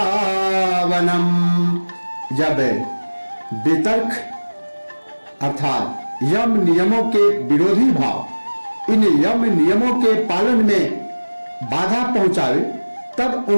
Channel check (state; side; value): inverted; both; correlation -1.00